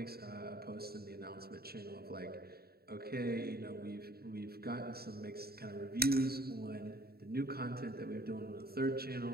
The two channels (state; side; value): late; left; 0.45 ms